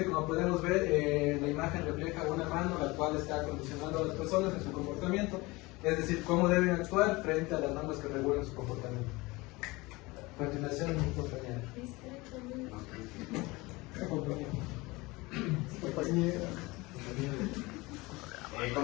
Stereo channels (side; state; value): right; quieter; 22.7 dB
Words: como podemos ver, la imagen refleja una mano la cual está condicionando a las personas en su comportamiento, es decir, cómo deben actuar frente a las normas que regulan su comportamiento. A continuación, mi compañera.